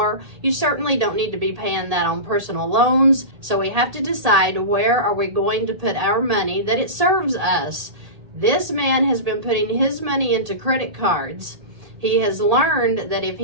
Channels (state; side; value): late; left; 1.8 ms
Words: You certainly don't need to be paying that on personal loans. So we have to decide, where are we going to put our money that it serves us. This man has been putting his money into credit cards. He has learned that if